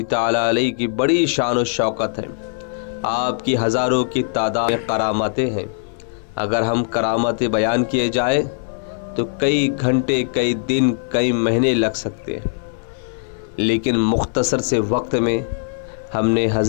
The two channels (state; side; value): silent; right; 56 dB below the other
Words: ताला अलैहि की बड़ी शान व शौकत है। आपकी हज़ारों की तादाद में करामतें हैं। अगर हम करामतें बयान किए जाए तो कई घंटे, कई दिन, कई महीने लग सकते हैं, लेकिन मुख्तसर से वक्त में हमने